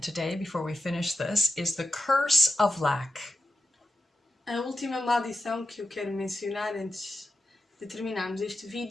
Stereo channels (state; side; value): normal; both; correlation 0.89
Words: before we finish this is the curse of lack. A última maldição que eu quero mencionar antes de terminarmos este